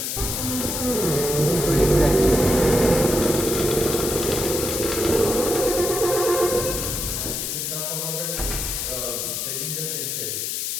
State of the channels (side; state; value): left; noise; hiss, 2 dB below the sound